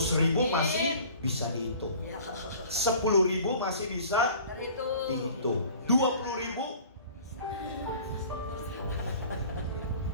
masih bisa dihitung, 10.000 masih bisa dihitung, 20.000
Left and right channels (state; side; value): inverted; both; correlation -0.47